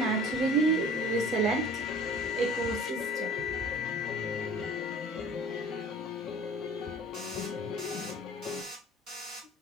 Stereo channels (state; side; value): normal; both; correlation 0.45